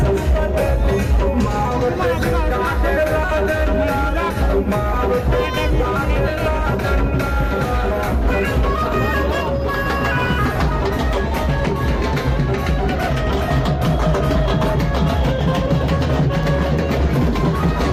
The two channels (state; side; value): identical; both; correlation 1.00